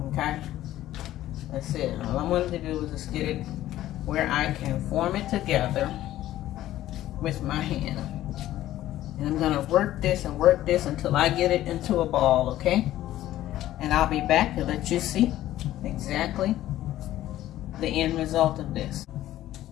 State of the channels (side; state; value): right; quieter; 13.9 dB